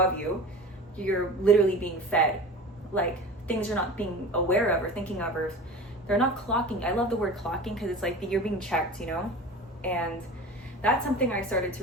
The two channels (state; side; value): normal; both; correlation 0.35